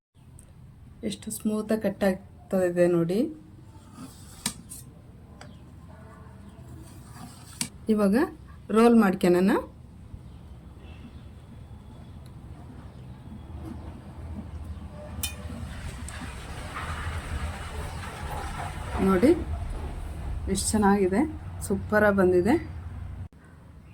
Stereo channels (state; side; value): identical; both; correlation 1.00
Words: ಎಷ್ಟು ಸ್ಮೂತಾಗಿ ಕಟ್ ಆಗ್ತದೆ ನೋಡಿ. ಇವಾಗ ರೋಲ್ ಮಾಡ್ಕೊಳ್ಳೋಣ. ನೋಡಿ ಎಷ್ಟು ಚೆನ್ನಾಗಿದೆ. ಸೂಪರಾಗಿ ಬಂದಿದೆ.